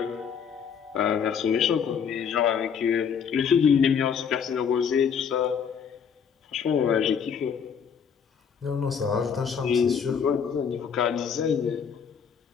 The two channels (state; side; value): quieter; right; 7.0 dB